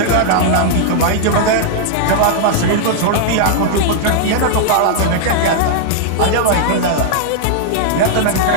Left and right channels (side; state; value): both; different; correlation -0.01